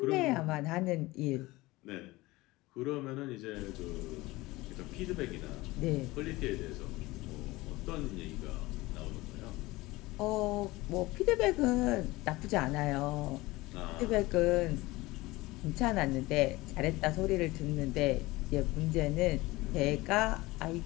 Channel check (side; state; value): right; quieter; 20.4 dB